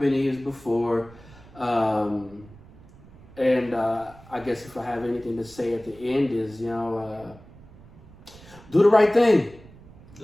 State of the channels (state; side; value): noise; right; rumble, 22 dB below the sound